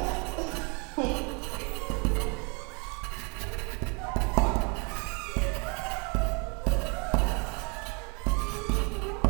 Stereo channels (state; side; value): quieter; left; 32.8 dB